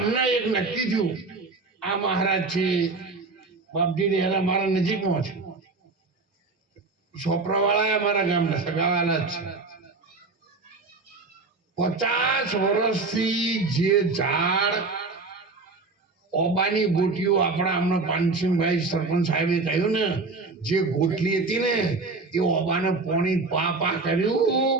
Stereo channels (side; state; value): left; quieter; 3.8 dB